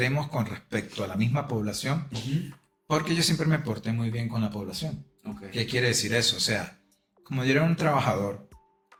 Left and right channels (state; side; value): identical; both; correlation 1.00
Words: con respecto a la misma población, Ujú. porque yo siempre me porté muy bien con la población. Ok. ¿Qué quiere decir eso? O sea, como yo era un trabajador